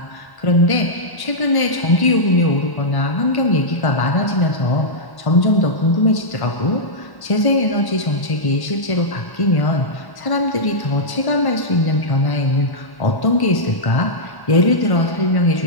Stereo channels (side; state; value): right; late; 1.1 ms